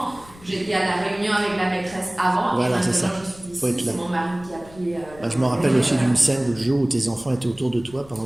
J'étais à la réunion avec la maîtresse avant. Voilà, et c'est ça. maintenant, je suis Faut être ici. là. C'est mon mari qui a pris. Je me rappelle aussi d'une scène le jour où tes enfants étaient autour de toi pendant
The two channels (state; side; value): noise; left; rumble, 22 dB below the sound